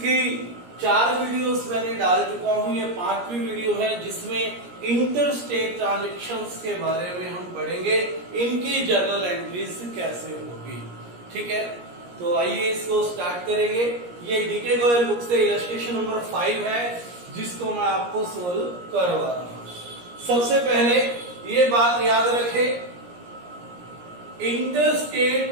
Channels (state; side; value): late; left; 17 ms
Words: 4 वीडियोस मैंने डाल चुका हूं, ये 5वीं वीडियो है जिसमें इंटर स्टेट ट्रांजेक्शंस के बारे में हम पढ़ेंगे, इनकी जर्नल एंट्रीज कैसे होगी। ठीक है, तो आइए इसको स्टार्ट करेंगे। ये डीके गोयल बुक से इलस्ट्रेशन नंबर 5 है जिसको मैं आपको सोल्व करवा रहा हूं। सबसे पहले ये बात याद रखें, इंटर